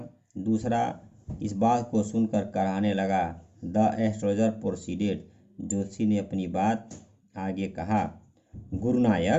दूसरा इस बात को सुनकर कराहने लगा। The astrologer proceeded. जोशी ने अपनी बात आगे कहा।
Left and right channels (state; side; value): identical; both; correlation 1.00